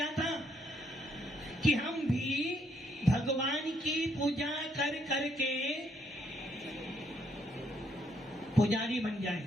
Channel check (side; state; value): both; normal; correlation 0.71